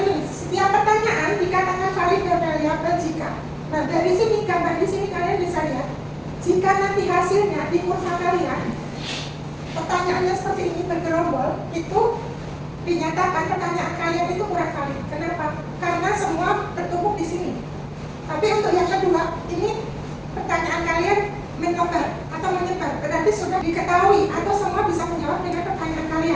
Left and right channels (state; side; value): identical; both; correlation 1.00